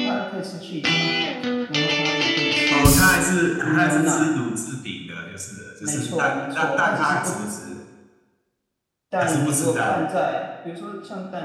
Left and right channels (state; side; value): identical; both; correlation 1.00